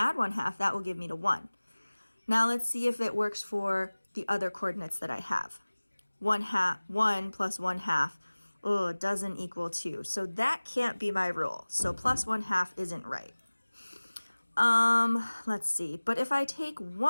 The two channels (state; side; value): inverted; both; correlation -1.00